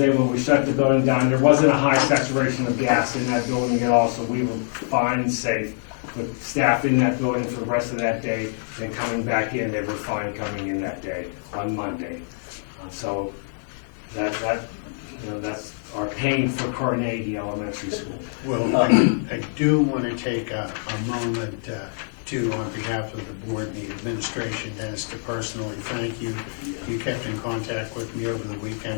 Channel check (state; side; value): silent; right; 62 dB below the other